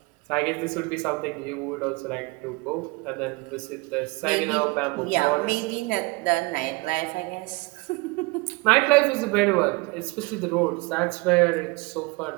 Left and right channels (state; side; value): quieter; left; 25.8 dB